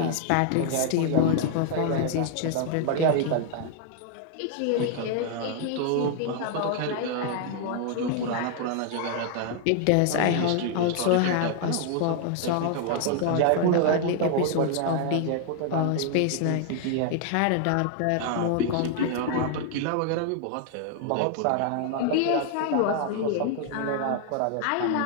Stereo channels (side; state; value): both; different; correlation 0.00